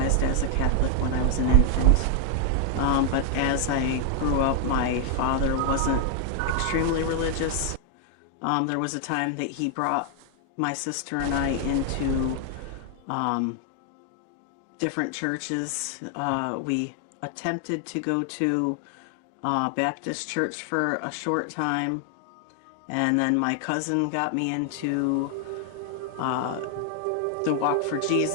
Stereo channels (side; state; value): both; different; correlation 0.00